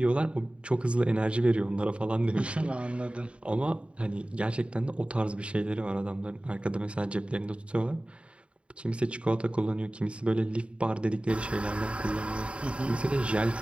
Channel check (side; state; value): left; late; 0.059 ms